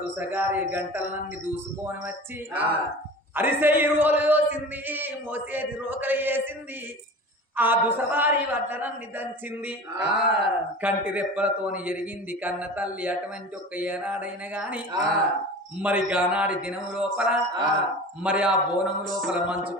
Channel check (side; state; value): both; normal; correlation 0.36